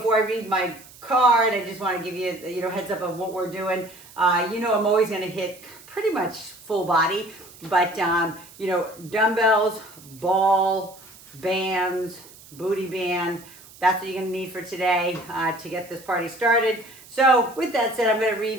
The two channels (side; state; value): right; noise; hiss, 21 dB below the sound